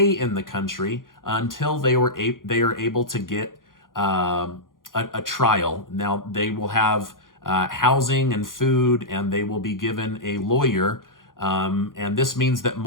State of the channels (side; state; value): right; late; 0.90 ms